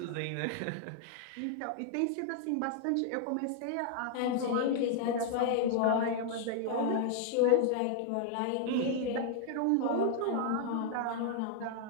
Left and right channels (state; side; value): different; both; correlation 0.00